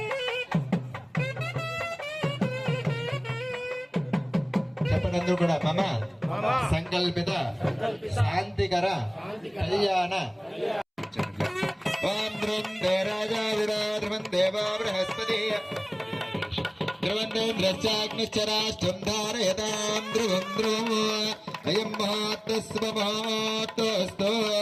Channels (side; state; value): both; identical; correlation 1.00